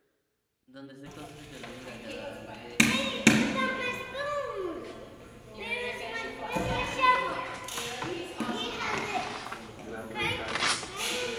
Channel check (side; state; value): both; identical; correlation 1.00